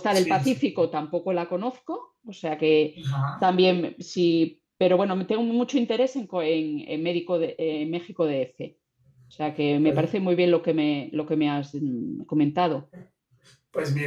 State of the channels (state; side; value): identical; both; correlation 1.00